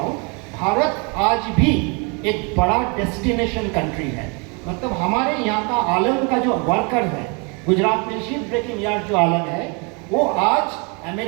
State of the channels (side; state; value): left; quieter; 32.9 dB